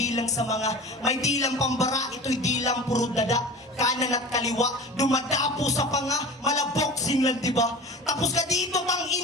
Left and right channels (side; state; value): both; normal; correlation 0.35